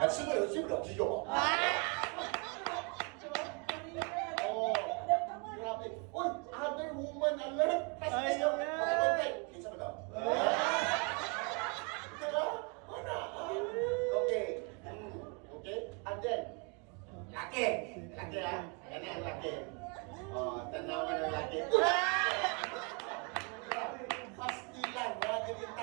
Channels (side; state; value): left; quieter; 34.3 dB